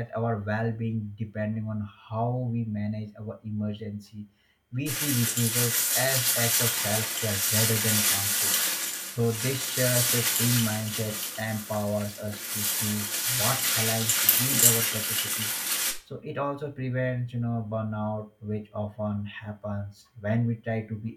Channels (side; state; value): both; identical; correlation 1.00